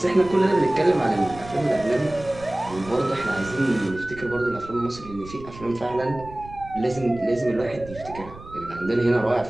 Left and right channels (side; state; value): right; noise; rumble, 17 dB below the sound